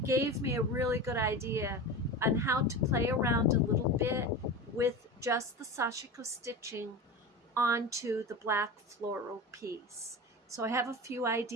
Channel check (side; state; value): both; normal; correlation 0.28